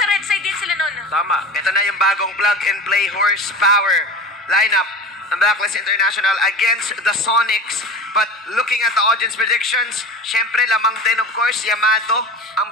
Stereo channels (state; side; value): normal; both; correlation 0.32